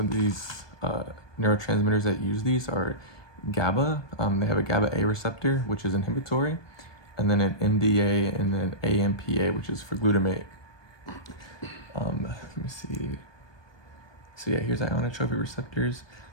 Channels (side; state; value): right; late; 1.2 ms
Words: these neurotransmitters that use these are GABA. They have a GABA A receptor, which is inhibitory, and then an MDA and then AMPA, which is for glutamate. Let me see. So yeah, here's ionotropic receptors.